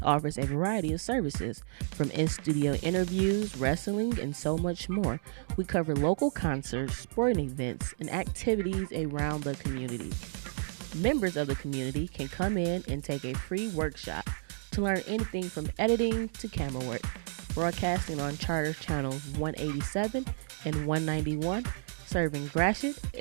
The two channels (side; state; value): left; silent; digital silence